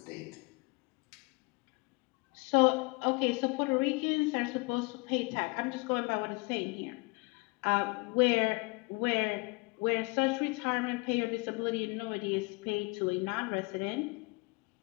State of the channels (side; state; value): right; quieter; 28.2 dB